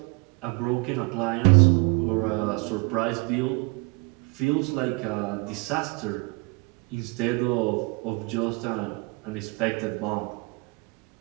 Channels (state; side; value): quieter; left; 29.4 dB